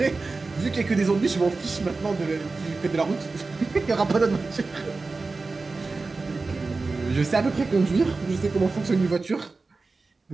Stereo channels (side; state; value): left; quieter; 3.8 dB